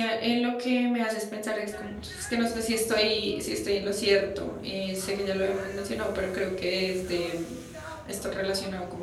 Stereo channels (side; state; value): both; identical; correlation 1.00